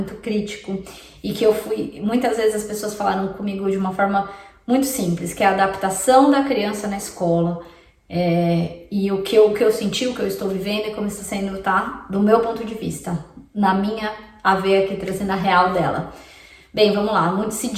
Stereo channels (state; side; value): identical; both; correlation 1.00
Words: crítico, e que muitas vezes as pessoas falaram comigo de uma forma muito simples, que é a adaptação da criança na escola, e o que eu senti, o que eu estou vivendo e como está sendo, tá? Do meu ponto de vista, na minha a ver aqui, trazendo a real dela. Bem, vamos lá, muito se